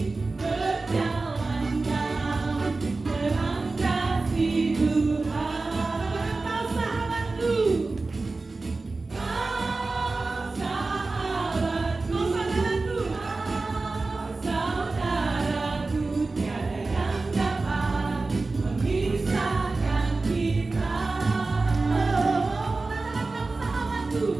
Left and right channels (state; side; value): quieter; left; 3.6 dB